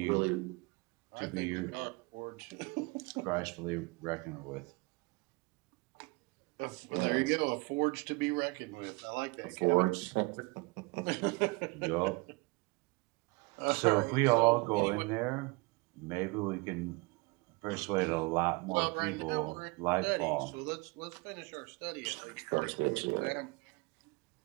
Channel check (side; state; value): left; quieter; 26.4 dB